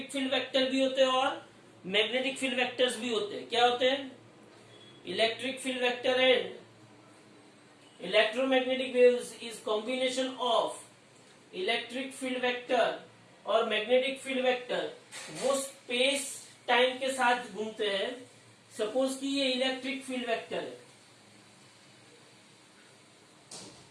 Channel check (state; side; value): identical; both; correlation 1.00